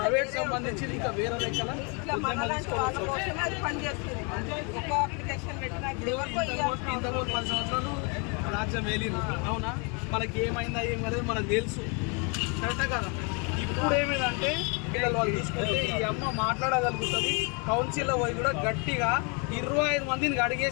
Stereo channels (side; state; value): right; quieter; 34.3 dB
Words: సంబంధించి ఇంకా వేరే లెక్కల ఇంతకు 10 సంవత్సరాలు రాజ్యం వేలిరు. అవునా, మనకి ఏమైందా ఏమనేది మనకు తెలుసు, కరెక్టే కదా. ఇప్పుడు ఏమిటంటే పిల్లలు వాళ్ళు తీసుకుంటే ఈ అమ్మ మాట్లాడగలుగుతుంది. కౌన్సిల్లో పోయి కూడా గట్టిగా 25 మందిని